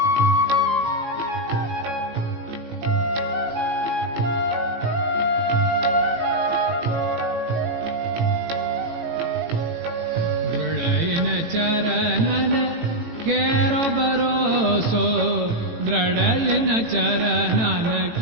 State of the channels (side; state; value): left; late; 18 ms